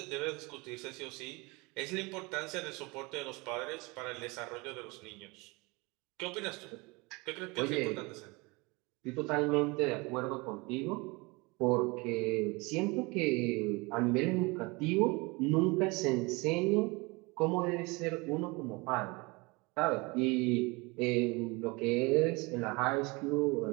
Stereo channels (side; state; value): left; quieter; 26.1 dB